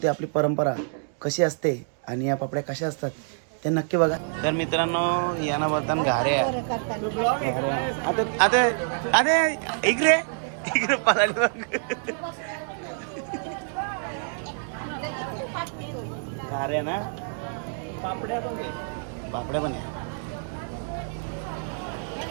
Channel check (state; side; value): silent; left; 60 dB below the other